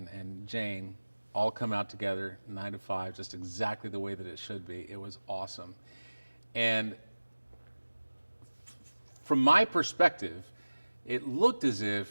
Jane all come out together, 9 to 5, just exactly the way that it should be. It was awesome. And from my perspective, it looked as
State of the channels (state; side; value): inverted; both; correlation -1.00